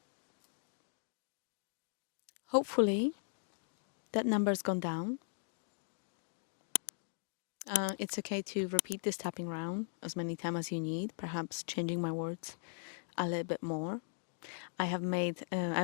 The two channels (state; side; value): silent; right; digital silence